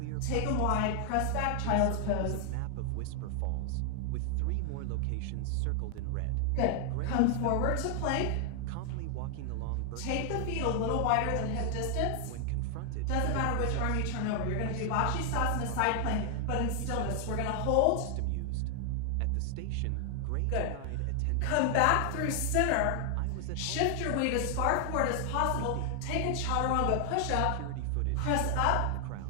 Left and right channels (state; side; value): different; both; correlation 0.00